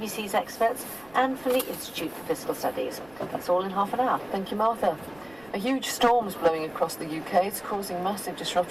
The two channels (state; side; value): noise; right; rumble, 26 dB below the sound